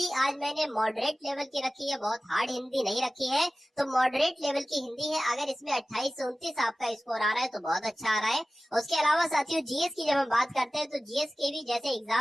आज मैंने मॉडरेट लेवल की रखी है, बहुत हार्ड हिंदी नहीं रखी है, तो मॉडरेट लेवल की हिंदी है। अगर इसमें 28 से 29 आपका स्कोर आ रहा है तो बहुत अच्छा आ रहा है। उसके अलावा साथियों जीएस की जब हम बात करते हैं तो जीएस के भी जैसे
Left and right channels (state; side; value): normal; both; correlation 0.96